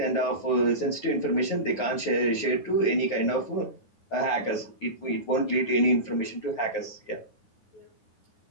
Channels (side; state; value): right; late; 9.5 ms